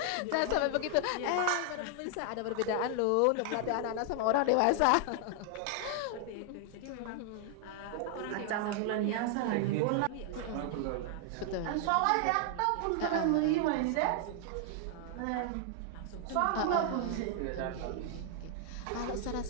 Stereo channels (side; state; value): both; different; correlation 0.00